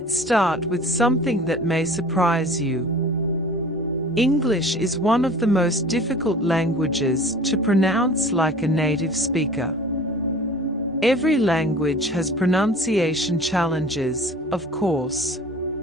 start with something that may surprise you. English is one of the most difficult languages to pronounce like a native speaker. Every language has pronunciation challenges, of course.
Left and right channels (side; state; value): both; normal; correlation 0.43